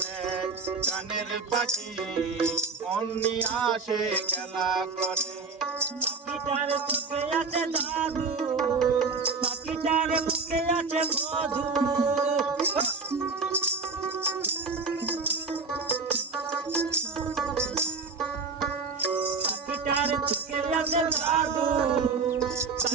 গানের পাখি মন নিয়ে আসে খেলা করে। পাখিটার চোখে আছে জাদু, পাখিটার মুখে আছে মধু। পাখিটার চোখে আছে জাদু,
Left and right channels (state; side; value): quieter; left; 4.5 dB